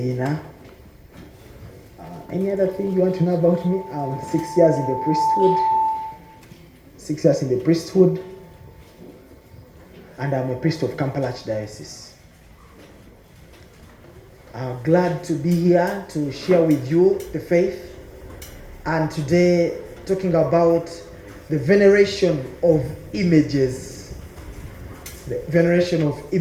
Any other thing you want to know about me? 6 years in the priesthood. 6 years in the priesthood. And I'm a priest of Kampala Archdiocese. I'm glad to be here to share with you the faith. And today, talking about the veneration of images. The veneration of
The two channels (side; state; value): both; identical; correlation 1.00